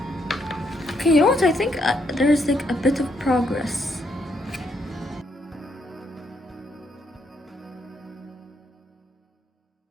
Okay, you know what? I think there's like a bit of progress.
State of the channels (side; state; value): both; normal; correlation 0.75